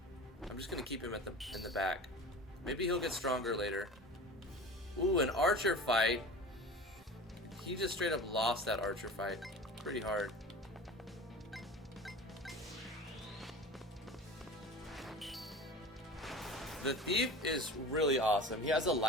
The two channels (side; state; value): both; normal; correlation 0.35